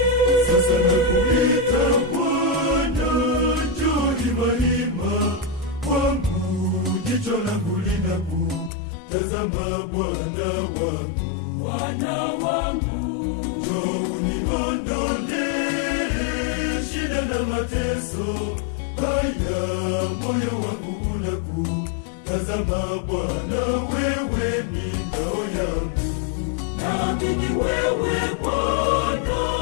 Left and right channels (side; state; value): right; drops out; at 8.7 s